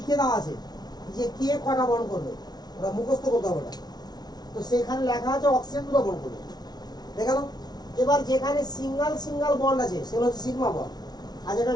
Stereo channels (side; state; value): right; late; 0.19 ms